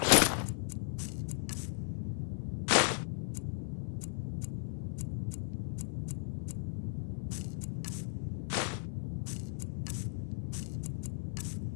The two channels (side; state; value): right; silent; 54 dB below the other